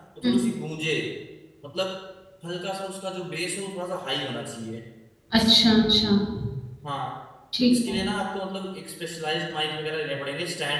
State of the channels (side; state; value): both; identical; correlation 1.00